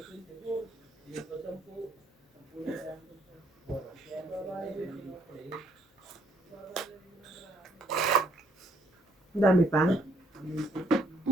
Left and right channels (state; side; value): normal; both; correlation 0.69